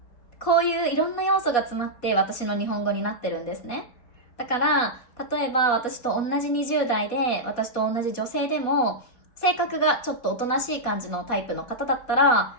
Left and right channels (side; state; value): right; late; 4.1 ms